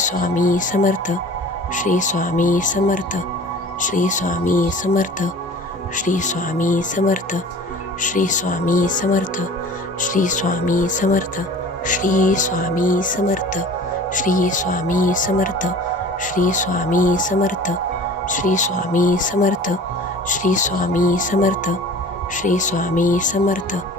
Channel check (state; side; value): normal; both; correlation 0.43